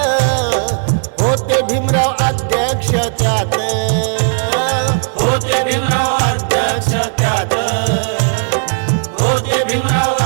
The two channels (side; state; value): left; silent; digital silence